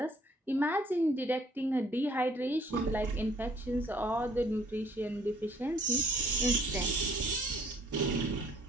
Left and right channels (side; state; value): both; normal; correlation 0.60